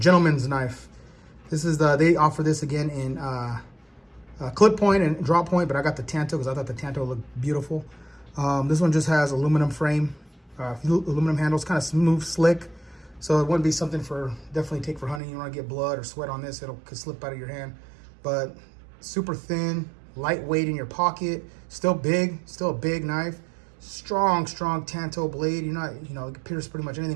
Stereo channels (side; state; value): left; drops out; at 15.2 s